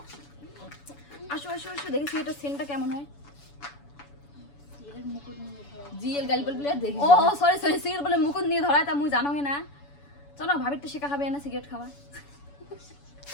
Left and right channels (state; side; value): late; right; 7.0 ms